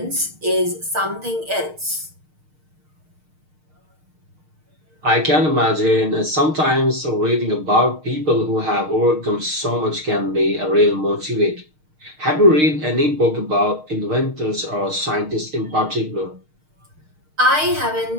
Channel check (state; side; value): late; left; 6.5 ms